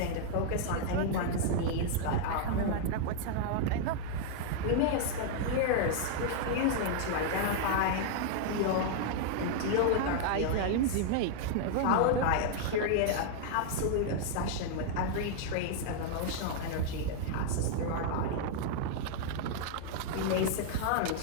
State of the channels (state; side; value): different; both; correlation -0.01